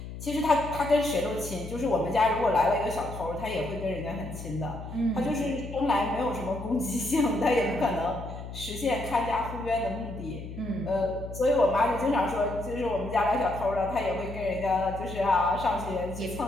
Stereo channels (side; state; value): left; noise; hum, 10 dB below the sound